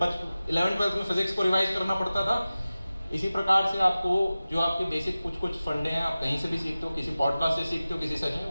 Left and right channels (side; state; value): both; inverted; correlation -0.96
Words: में फिजिक्स को रिवाइज करना पड़ता था, इसी प्रकार से आपको जो आपके बेसिक कुछ फंडे हैं, आप कहीं से भी सीखते हो, किसी पॉडकास्ट से सीखते हो, किसी सेशन,